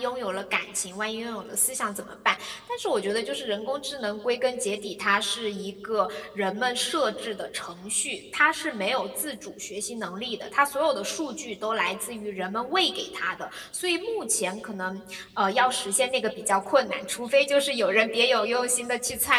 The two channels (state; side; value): identical; both; correlation 1.00